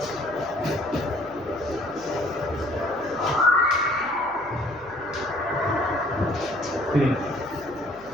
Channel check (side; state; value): left; noise; hum, 26 dB below the sound